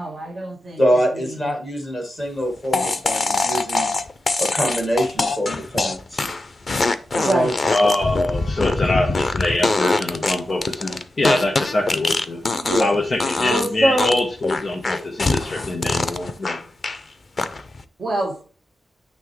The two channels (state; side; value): normal; both; correlation 0.91